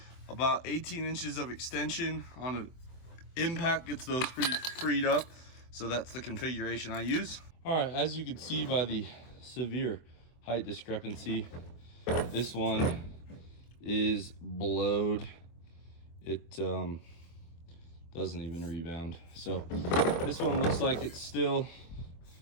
about 18 inches of extension on an impact gets those pretty freed up. So that's the configuration I use. All right, as you can see by the severe height discrepancy, this one is blowed. It doesn't even rebound. So this one looks like it's still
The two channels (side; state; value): right; late; 24 ms